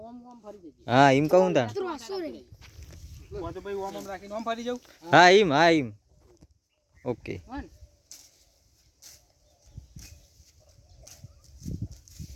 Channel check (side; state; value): both; identical; correlation 1.00